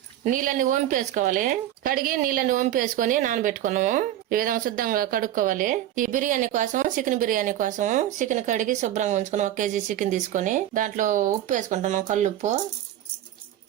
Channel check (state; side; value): quieter; left; 12.5 dB